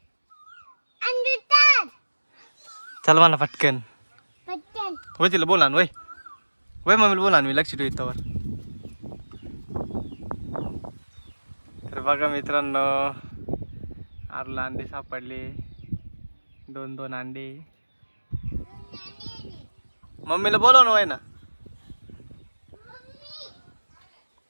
चल म्हणा पटकन. होय तिला बोला ना. वय मम्मीला बोला ना. मी लक्ष ठेवतो त्यावर. तर बघा मित्रांनो, आरूला अंडे सापडले. 2-2 अंडे. मम्मीला बोलव ना. वय ना.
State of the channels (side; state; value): both; inverted; correlation -1.00